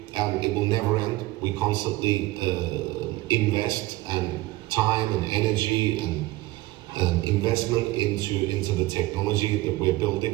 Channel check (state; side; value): quieter; left; 18.6 dB